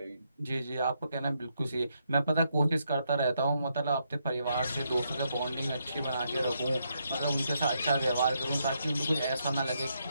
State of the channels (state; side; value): inverted; both; correlation -0.78